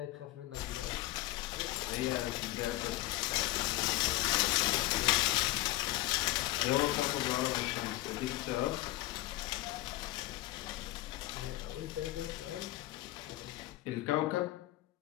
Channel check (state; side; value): quieter; right; 17.4 dB